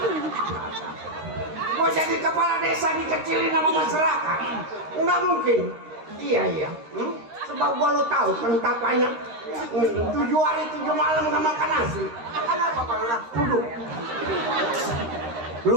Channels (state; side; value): late; left; 13 ms